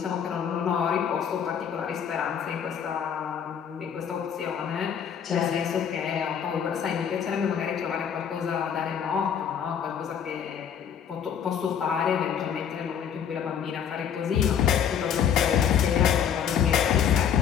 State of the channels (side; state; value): right; quieter; 8.2 dB